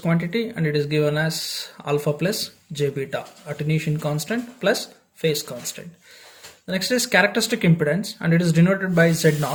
and it is given as alpha plus j beta, attenuation constant plus phase constant. The next is characteristic impedance, and it is denoted by Z0.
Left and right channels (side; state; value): both; identical; correlation 1.00